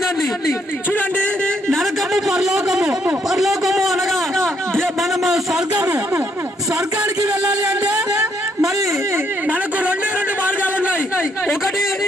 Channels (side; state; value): both; normal; correlation 0.72